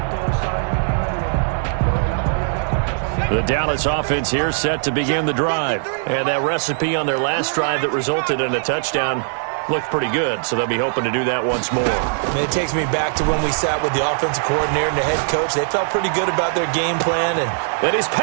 The Dallas offense here set to begin the drive. And that recipe on their last drive that resulted in a touchdown looked pretty good, so they'll be hoping to do that once more. It takes me back to when we sat with the offensive coordinator and the head coach. They felt pretty good about their game plan. And his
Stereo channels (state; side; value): silent; left; 66 dB below the other